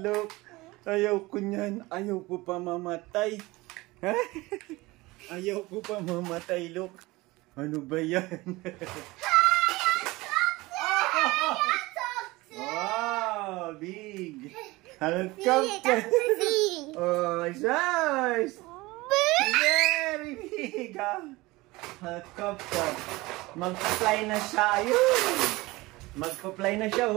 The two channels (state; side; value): quieter; left; 21.1 dB